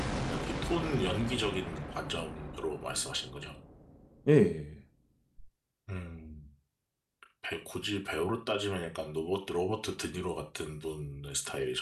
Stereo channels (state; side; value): identical; both; correlation 1.00